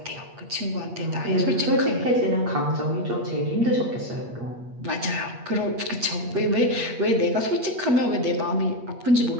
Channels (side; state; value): left; late; 8.4 ms